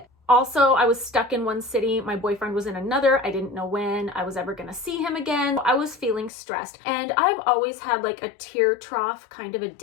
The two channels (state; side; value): drops out; right; at 6.3 s